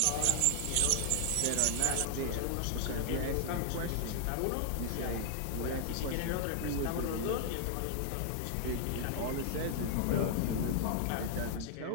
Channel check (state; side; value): different; both; correlation -0.01